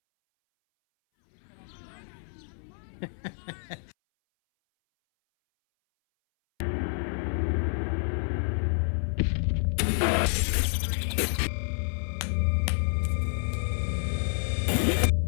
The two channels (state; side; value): silent; right; 59 dB below the other